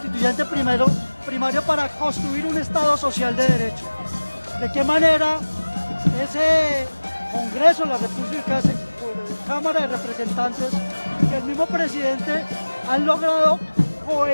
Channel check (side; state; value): both; inverted; correlation -1.00